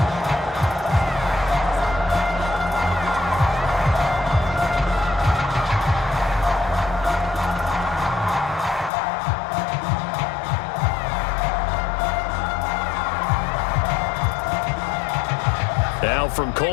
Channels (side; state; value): right; drops out; at 8.9 s